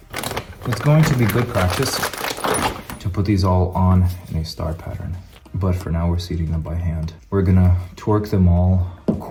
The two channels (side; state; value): both; identical; correlation 1.00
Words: It's going to be good practice put these all on in a star pattern, but for now we're seating them by hand. We're gonna torque them all a